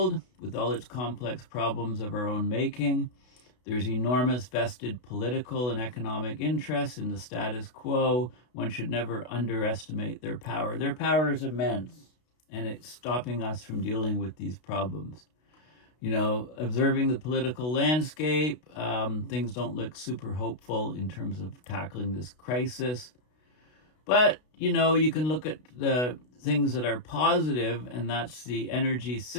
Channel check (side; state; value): right; late; 32 ms